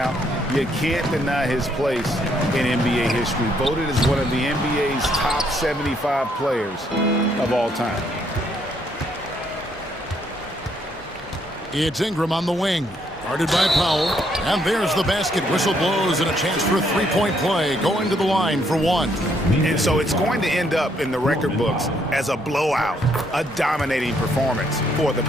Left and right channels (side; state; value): both; normal; correlation 0.71